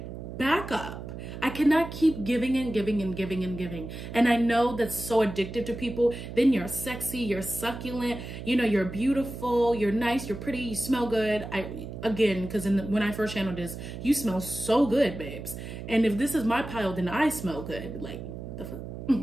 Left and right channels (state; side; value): noise; right; hum, 9 dB below the sound